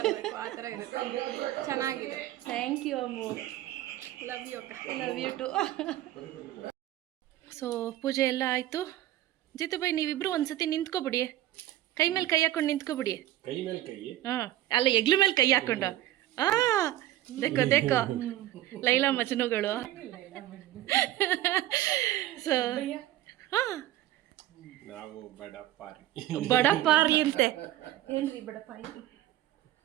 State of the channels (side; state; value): left; quieter; 14.4 dB